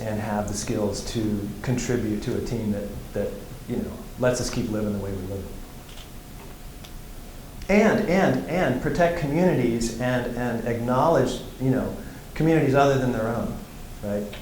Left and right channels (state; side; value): identical; both; correlation 1.00